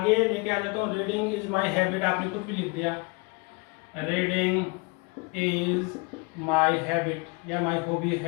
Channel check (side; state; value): right; quieter; 29.3 dB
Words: लेके आ जाता हूँ, रीडिंग इज माई हैबिट, आपने कुछ भी लिख दिया, रीडिंग इज माई हैबिट या माई हॉबी,